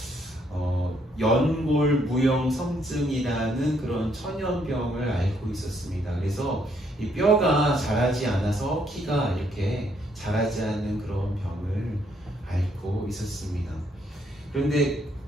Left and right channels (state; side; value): normal; both; correlation 0.71